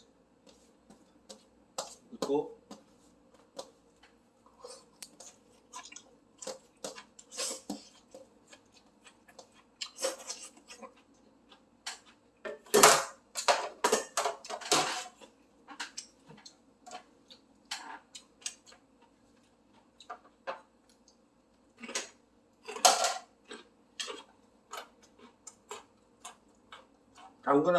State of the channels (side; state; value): both; identical; correlation 1.00